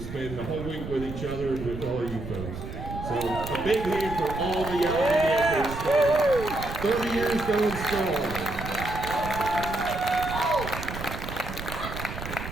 spend the whole week with each other and with all of you folks. So a big hand for all the Allegheny Echoes. 30 years going strong.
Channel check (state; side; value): noise; right; rumble, 8 dB below the sound